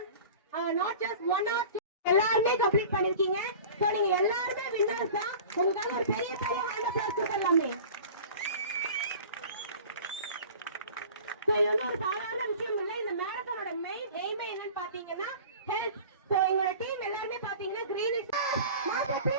நாட் ஜஸ்ட் 1 or 2 எல்லாருமே கம்ப்ளீட் பண்ணிருக்கீங்க. சோ நீங்க எல்லாருமே வின்னர்ஸ் தான். உங்களுக்காக ஒரு பெரிய பெரிய ஹேண்ட் அப்ளாஸ் கொடுக்கலாமே. சோ இது ஒரு சாதாரண விஷயம் இல்ல. இந்த மேரத்தானோட மெயின் எய்மே என்னன்னு பாத்தீங்கன்னா ஹெல்த். சோ எங்களோட டீம் எல்லாருமே பாத்தீங்கன்னா green is not a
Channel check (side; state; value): both; inverted; correlation -0.40